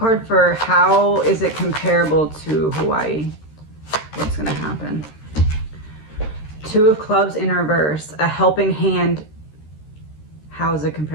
for how is it comparable to Hawaii? What's going to happen? Two of Clubs in reverse, a helping hand. How is it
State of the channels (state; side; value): late; right; 13 ms